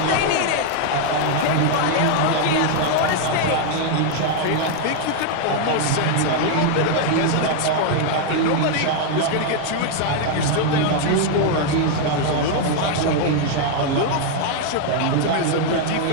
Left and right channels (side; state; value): both; different; correlation 0.00